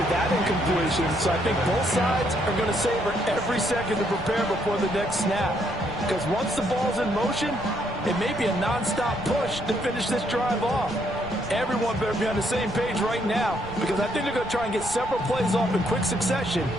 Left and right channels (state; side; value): noise; right; rumble, 15 dB below the sound